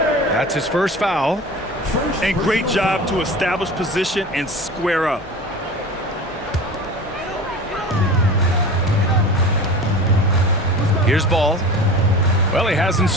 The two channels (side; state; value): both; normal; correlation 0.35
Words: his first foul. And great job to establish position and square up. Here's Ball. Well, he hasn't